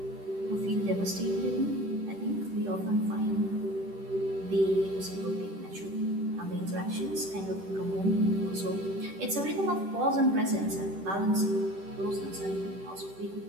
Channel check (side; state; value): left; late; 10 ms